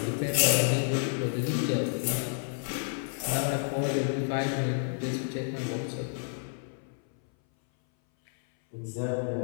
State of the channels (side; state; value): right; silent; 58 dB below the other